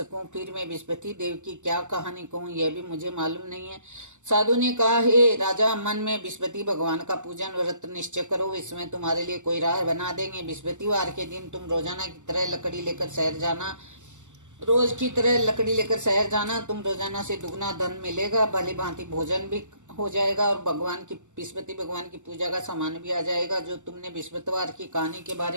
फिर मैं बृहस्पति देव की क्या कहानी कहूं, यह भी मुझे मालूम नहीं है। साधु ने कहा, हे राजा, मन में बृहस्पति भगवान का पूजन व्रत निश्चय करो, इसमें तुम्हारे लिए कोई राह बना देंगे। बृहस्पतिवार के दिन तुम रोजाना की तरह लकड़ी लेकर शहर जाना। रोज की तरह लकड़ी लेकर शहर जाना। तुम रोजाना से दुगना धन मिलेगा, भली भांति भोजन भी हो जाएगा और बृहस्पति भगवान की पूजा का सामान भी आ जाएगा। जो तुमने बृहस्पतिवार की कहानी के बारे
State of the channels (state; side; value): late; left; 0.85 ms